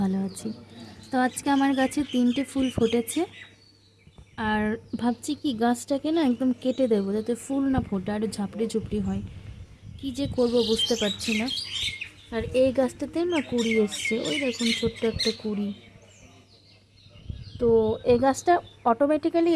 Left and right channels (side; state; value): both; identical; correlation 1.00